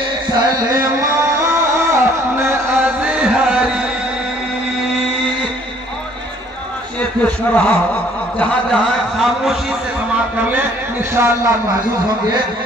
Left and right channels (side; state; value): both; normal; correlation 0.59